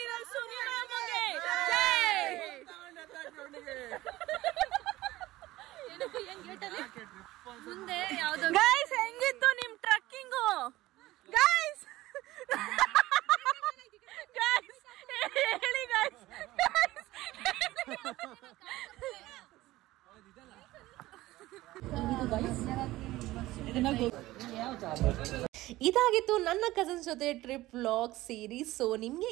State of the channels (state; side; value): quieter; left; 17.3 dB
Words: guys. ಹೆಂಗಿತ್ತು ನಿಮ್ trekking guys? Guys ಹೇಳಿ guys. ಇದಾಗಿತ್ತು ನನ್ನ cousins ಜೊತೆ trip vlog series. So ನಿಮಗೆ